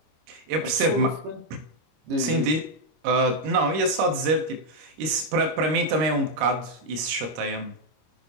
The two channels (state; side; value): late; left; 26 ms